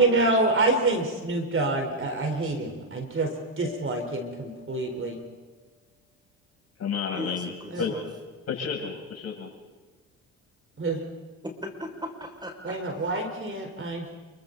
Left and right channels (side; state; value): both; normal; correlation 0.03